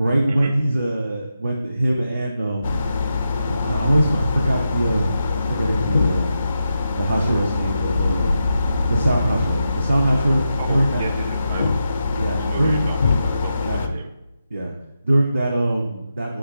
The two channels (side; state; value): both; inverted; correlation -0.87